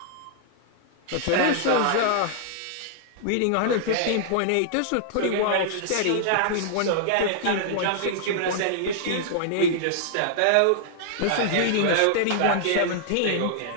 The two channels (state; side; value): different; both; correlation -0.01